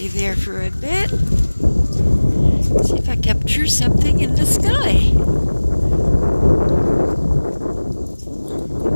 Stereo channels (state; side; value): inverted; both; correlation -1.00